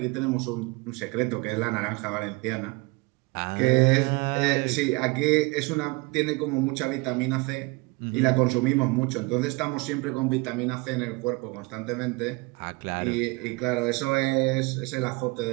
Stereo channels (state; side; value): quieter; left; 26.2 dB